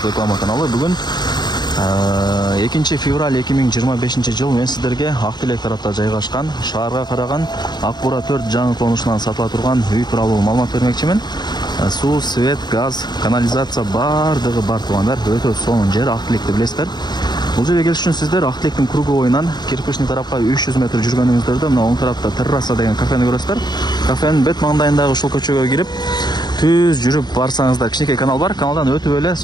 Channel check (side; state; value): right; late; 0.21 ms